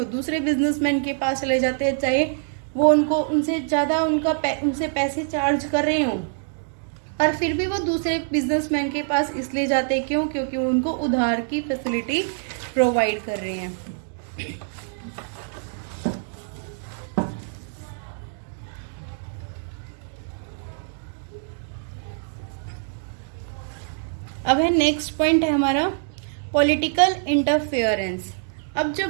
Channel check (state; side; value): silent; left; digital silence